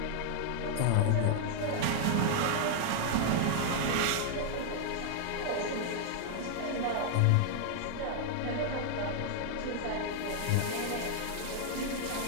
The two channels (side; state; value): both; different; correlation 0.00